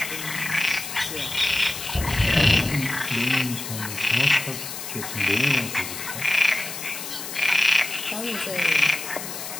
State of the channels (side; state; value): left; noise; hiss, 8 dB below the sound